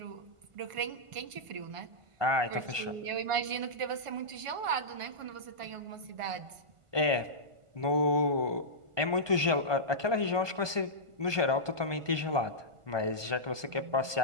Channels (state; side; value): late; left; 1.5 ms